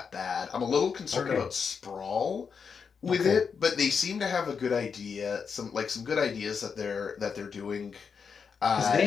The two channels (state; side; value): quieter; right; 6.1 dB